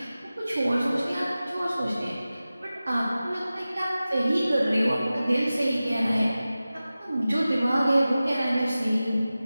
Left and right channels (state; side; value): inverted; both; correlation -0.96